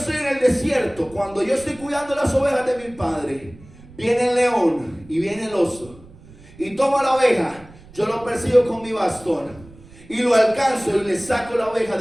en el desierto, cuando yo estoy cuidando las ovejas de mi padre, viene el león y viene el oso y toma la oveja. Yo lo persigo con mi bastón y lo alcanzo y le saco la oveja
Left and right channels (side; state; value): right; noise; rumble, 22 dB below the sound